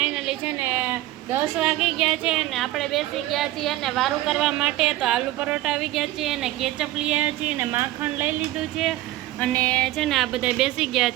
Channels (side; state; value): left; quieter; 16.1 dB